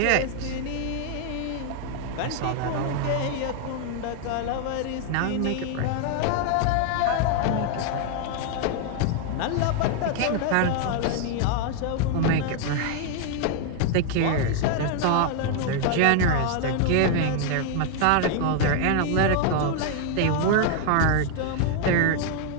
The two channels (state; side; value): different; both; correlation 0.00